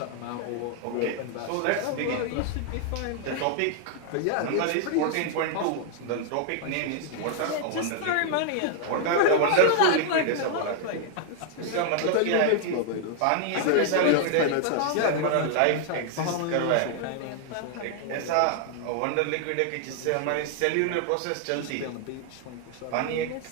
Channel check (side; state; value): both; different; correlation 0.00